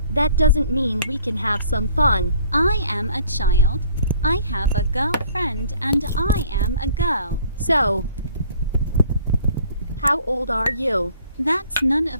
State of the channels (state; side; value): inverted; both; correlation -0.56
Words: That doesn't mean we can have some fun. I am a child. I have a girlfriend and I am a girl. So, how old are you? That's none